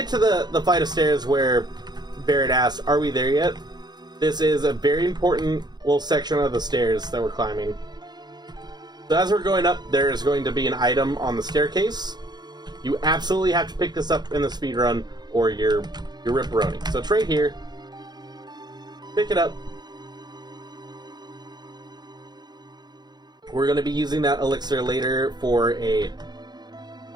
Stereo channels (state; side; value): late; left; 0.20 ms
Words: to the flight of stairs where Barret asked, are we there yet? This is a very important little section of the stairs that we're climbing. So as we're going up, there is going to be an item on the staircase. You absolutely have to pick this up in the speed run, or you're ripperoni. So it's right here. Pick it up. We're going to be using that elixir later for a